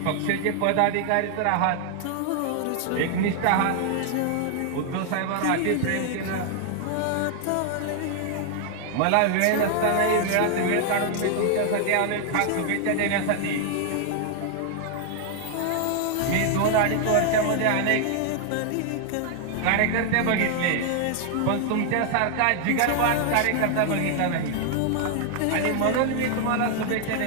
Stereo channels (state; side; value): different; both; correlation 0.00